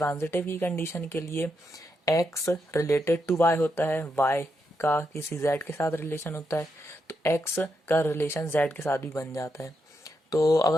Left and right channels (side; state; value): both; normal; correlation 0.83